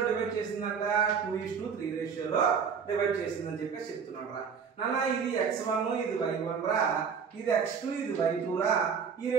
డివైడ్ చేసిందంట, 2:3 రేషియోలో డివైడ్ చేసిందని చెప్పేసి చెప్తున్నాడు రా నాన్న. ఇది x1, ఇది y1 రా, ఇది x2, ఇది y2 రా. ఈ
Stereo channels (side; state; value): left; quieter; 6.4 dB